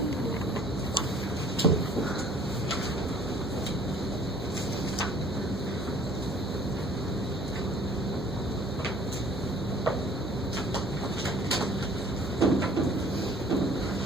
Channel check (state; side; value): normal; both; correlation 0.54